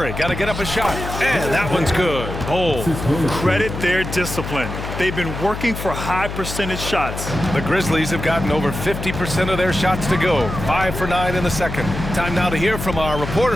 got to get up a shot. And that one's good. Bol. Credit their discipline. They've been working for high percentage shots. The Grizzlies have gotten over 50% of their shots to go. 5 for 9 in the second. Time now to hear from our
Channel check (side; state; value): left; noise; hum, 7 dB below the sound